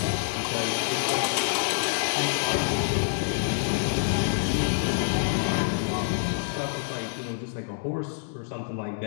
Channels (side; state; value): right; silent; digital silence